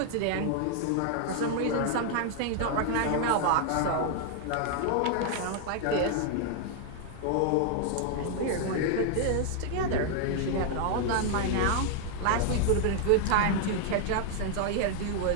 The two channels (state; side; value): different; both; correlation 0.00